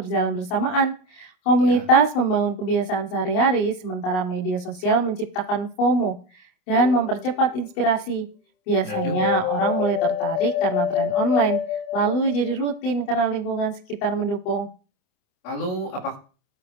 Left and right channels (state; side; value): late; right; 27 ms